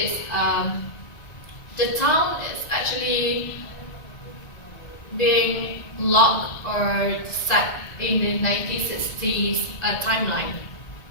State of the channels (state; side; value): late; right; 1.9 ms